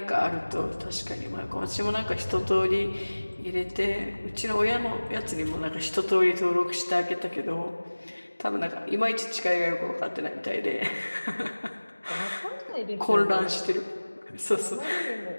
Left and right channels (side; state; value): both; inverted; correlation -1.00